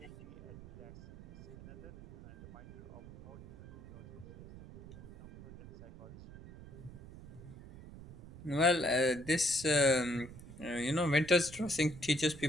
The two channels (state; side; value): noise; right; rumble, 15 dB below the sound